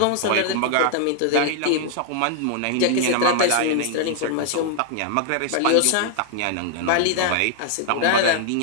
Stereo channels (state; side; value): different; both; correlation 0.00